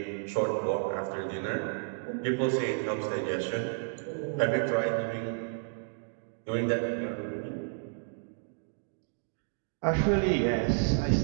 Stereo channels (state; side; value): silent; left; digital silence